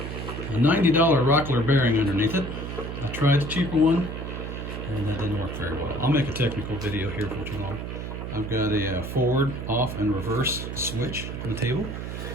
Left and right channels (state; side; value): noise; right; hum, 6 dB below the sound